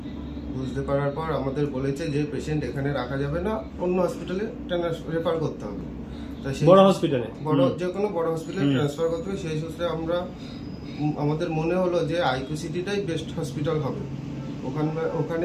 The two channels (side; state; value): both; identical; correlation 1.00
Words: বুঝতে পারার পর আমাদের বলেছে যে পেশেন্ট এখানে রাখা যাবে না, অন্য হসপিটালে রেফার করতে হবে। তা সেই বড় হসপিটালে, যে কোনো বড় হসপিটালে ট্রান্সফার করতে হবে। সেই সূত্রে আমাদের মনে হলো যে আইকিউ সিটিটাই বেস্ট হসপিটাল হবে।